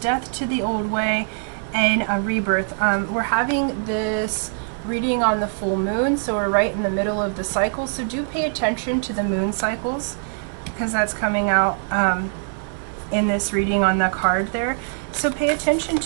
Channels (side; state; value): left; silent; digital silence